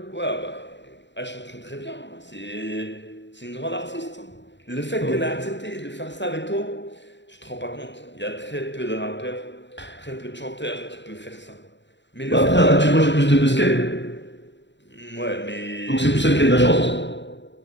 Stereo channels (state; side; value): late; right; 0.52 ms